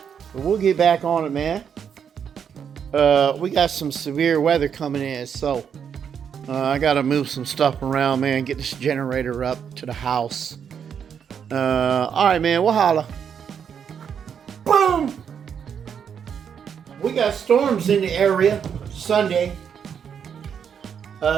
but we'll get back on it, man. We got some severe weather coming in, so I gotta move some stuff around, man. Get this generator up to the house. Alright, man, we'll holla. Boom! We got storms in the area Sunday.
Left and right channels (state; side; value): quieter; left; 7.6 dB